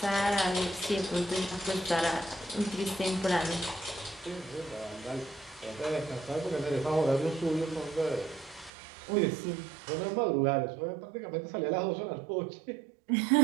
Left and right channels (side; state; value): left; drops out; at 8.7 s